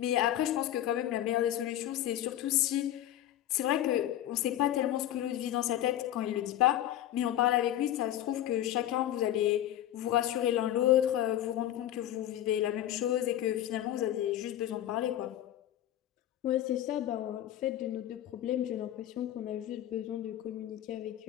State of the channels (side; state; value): right; quieter; 12.6 dB